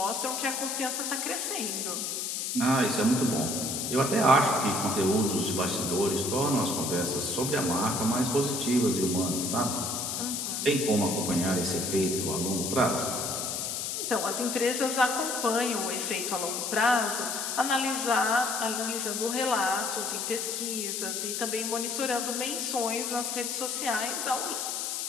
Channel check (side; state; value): left; noise; hiss, 2 dB below the sound